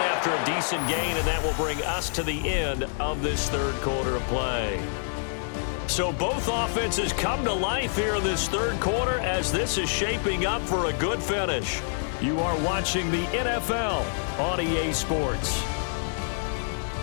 after a decent gain, and that will bring us to the end of this third quarter of play. So both offenses come to life here in this third quarter as this is shaping up for a good finish. You are watching the NFL on EA Sports.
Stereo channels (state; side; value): silent; right; digital silence